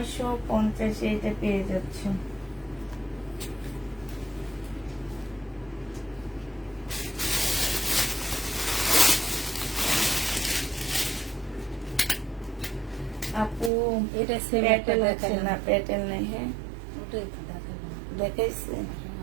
এটা পেয়ে যাচ্ছ। আপু এটা সেম একটা প্যাটেল আছে দেখালাম। না? প্যাটেল নেই। হ্যাঁ ওটাই তো দেখালাম। দেখাইছে,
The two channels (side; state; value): left; drops out; at 13.7 s